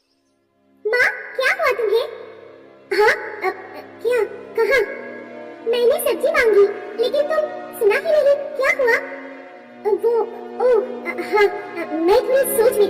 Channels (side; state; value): both; identical; correlation 1.00